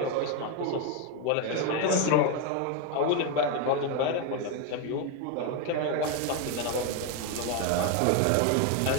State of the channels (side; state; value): both; different; correlation 0.02